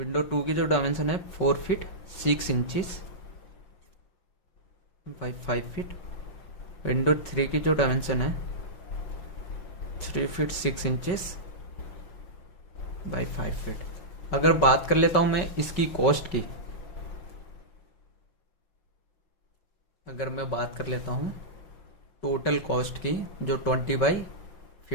2 की जो डायमेंशन है 4 feet 6 inches by 5 feet. Window 3 की जो डायमेंशन है 3 फीट 6 इंचेस बाई 5 फीट। अगर बात कर लेता हूँ मैं इसकी कॉस्ट की, अगर मैं बात कर लेता हूँ टोटल कॉस्ट की जो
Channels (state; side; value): late; right; 5.3 ms